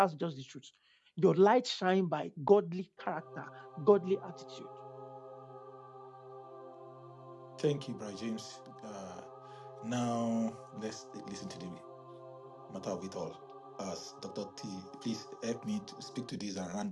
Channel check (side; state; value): both; identical; correlation 1.00